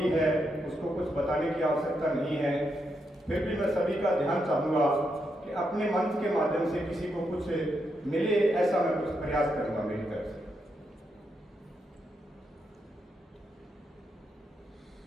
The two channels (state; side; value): normal; both; correlation 0.82